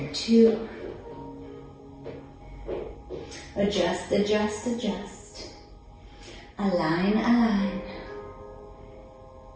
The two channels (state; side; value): identical; both; correlation 1.00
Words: 2. Adjust, adjust, adjust. Align, align.